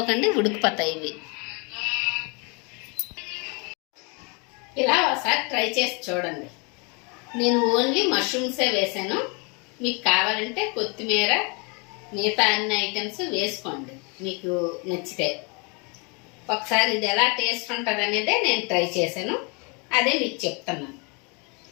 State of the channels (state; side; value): quieter; right; 32.1 dB